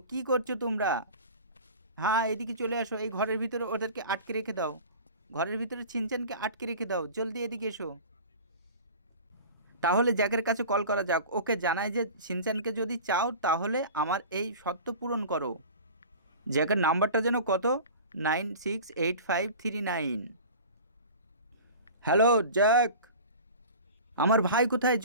কি করছো তোমরা? হ্যাঁ এদিকে চলে আসো, এই ঘরের ভিতরে ওদেরকে আটকে রেখে দাও, ঘরের ভিতরে ছিনচানকে আটকে রেখে দাও, জলদি এদিকে এসো। তাহলে জ্যাকের কাছে কল করা যাক, ওকে জানাই যে ছিনচানকে যদি চাও তাহলে আমার এই শর্ত পূরণ করো। জ্যাকের নাম্বারটা যেন কত? 968539। হ্যালো জ্যাক, আমার ভাই কোথায়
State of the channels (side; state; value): both; inverted; correlation -0.38